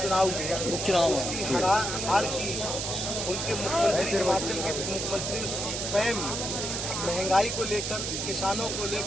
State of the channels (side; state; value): right; noise; hiss, 3 dB below the sound